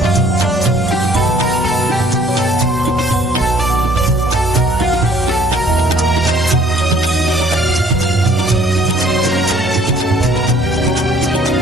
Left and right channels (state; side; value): normal; both; correlation 0.58